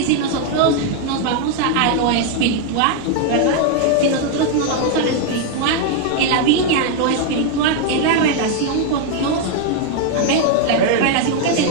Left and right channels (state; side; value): different; both; correlation 0.00